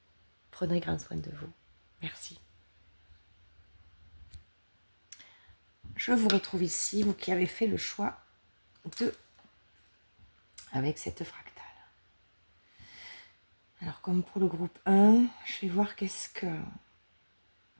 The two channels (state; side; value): inverted; both; correlation -1.00